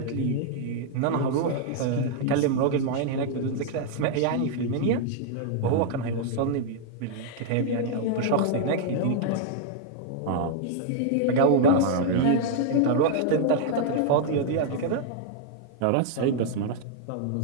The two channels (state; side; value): different; both; correlation -0.01